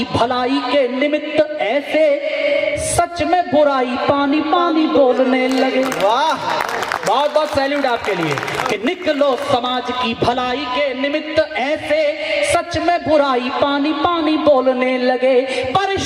भलाई के निमित्त ऐसे, सच में बुराई पानी पानी बोलने लगे। वाह। बहुत बहुत सैल्यूट आपके लिए कि निकलो समाज की भलाई के निमित्त ऐसे, सच में बुराई पानी पानी बोलने लगे।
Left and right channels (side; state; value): both; identical; correlation 1.00